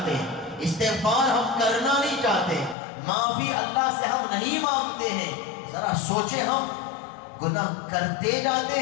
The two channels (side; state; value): right; drops out; at 2.8 s